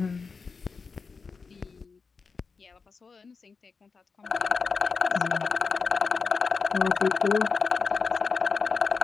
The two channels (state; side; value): quieter; right; 4.9 dB